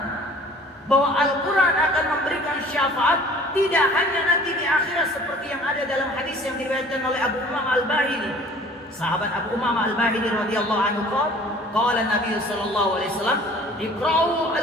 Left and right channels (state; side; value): normal; both; correlation 0.49